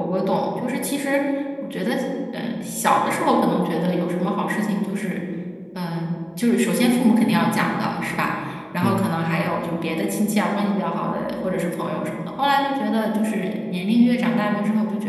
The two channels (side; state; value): both; identical; correlation 1.00